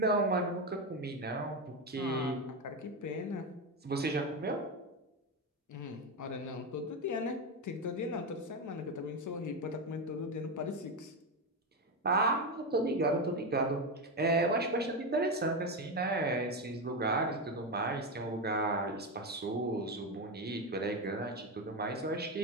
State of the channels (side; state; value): both; normal; correlation 0.12